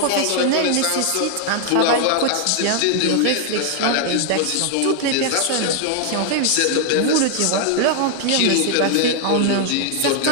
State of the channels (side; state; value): both; different; correlation 0.00